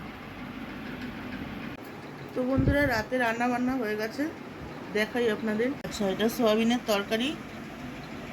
তো বন্ধুরা, রাতে রান্না বান্না হয়ে গেছে, দেখাই আপনাদের। আচ্ছা, এটা সয়াবিনের তরকারি,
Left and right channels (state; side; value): identical; both; correlation 1.00